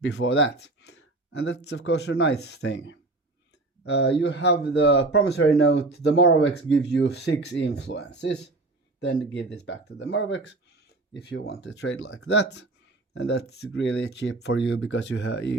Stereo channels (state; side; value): quieter; left; 3.1 dB